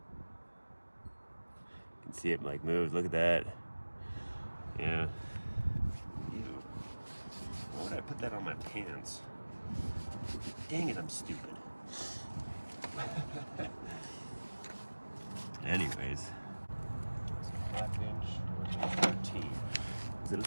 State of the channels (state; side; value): inverted; both; correlation -1.00